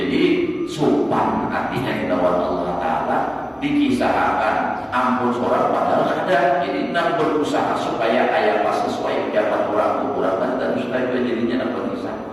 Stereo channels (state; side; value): identical; both; correlation 1.00